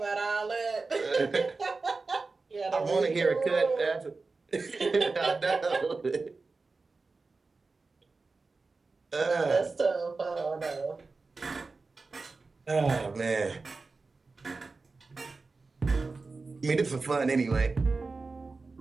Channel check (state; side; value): quieter; left; 3.9 dB